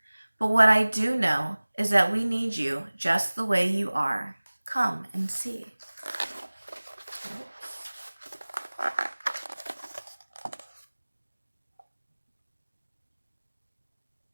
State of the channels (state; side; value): inverted; both; correlation -1.00